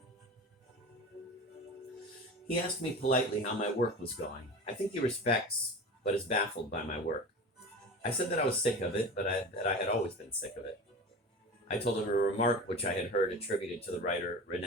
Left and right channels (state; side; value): normal; both; correlation 0.32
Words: He asked me politely how my work was going. I think he respects, but is baffled by my work. I said that I was sick of it, but that I had always been sick of it. I told him a remark which I had heard attributed to the writer